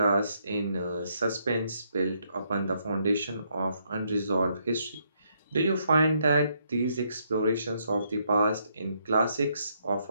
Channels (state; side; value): inverted; both; correlation -0.74